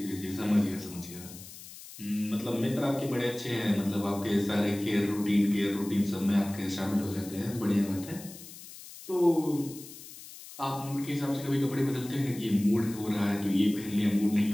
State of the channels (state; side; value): noise; left; hiss, 16 dB below the sound